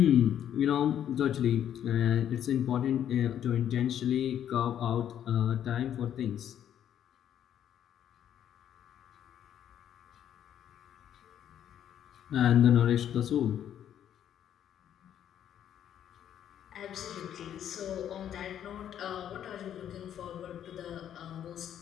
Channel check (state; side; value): quieter; right; 10.1 dB